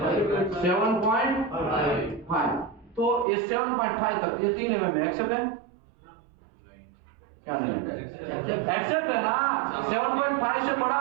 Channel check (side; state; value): left; drops out; at 3.2 s